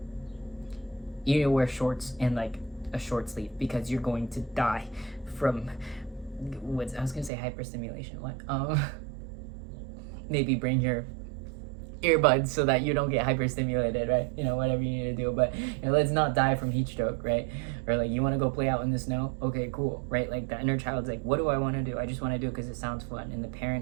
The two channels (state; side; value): drops out; left; at 7.3 s